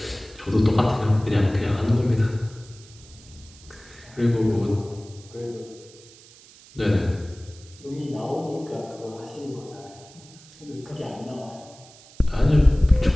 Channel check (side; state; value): right; noise; hiss, 23 dB below the sound